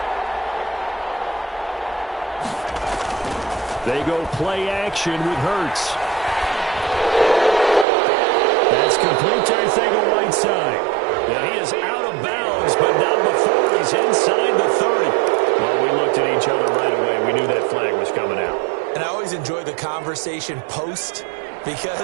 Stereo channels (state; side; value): drops out; left; at 7.9 s